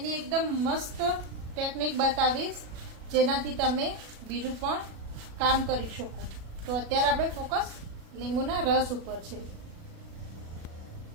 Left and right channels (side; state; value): left; late; 36 ms